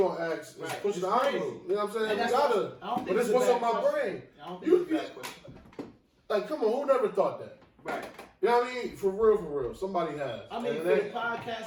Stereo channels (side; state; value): both; identical; correlation 1.00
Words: ask is Right. pushing the It's crazy. envelope. You know what I'm saying? And We that's gotta. what- I don't think But it's it's a what's bad on my question. brain. I don't think it's a bad question. Like, come on, who never thought that? Right. You know what I mean? For real. Somebody has. I mean, And for the that-